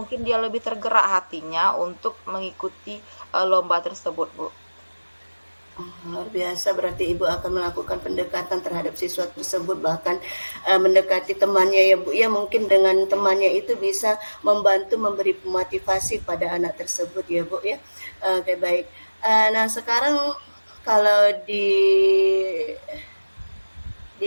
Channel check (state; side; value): inverted; both; correlation -1.00